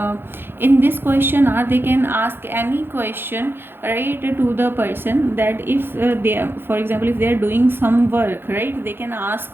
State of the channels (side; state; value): left; late; 0.10 ms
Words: this question hour they can ask any question, right, to the person. That if they are, for example, if they are doing some work, right, they can ask